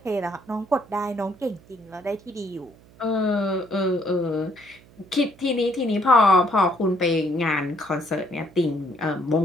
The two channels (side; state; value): right; noise; hum, 26 dB below the sound